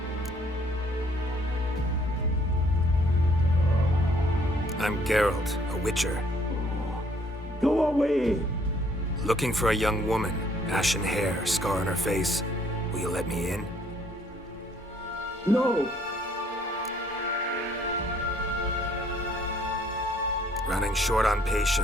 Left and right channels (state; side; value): normal; both; correlation 0.63